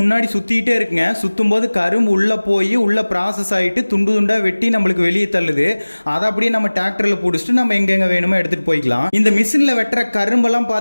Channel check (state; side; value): inverted; both; correlation -1.00